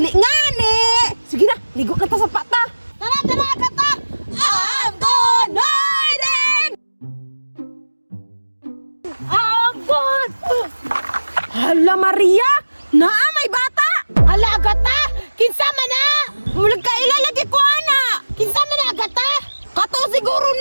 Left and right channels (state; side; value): inverted; both; correlation -1.00